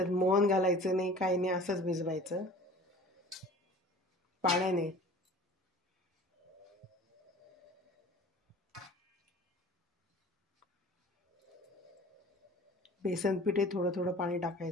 मोहन घालायचं नाही, काही नाही, असंच भिजवायचं पाण्याने। बेसन पिठे थोडं थोडं पाणी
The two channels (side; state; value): both; normal; correlation 0.44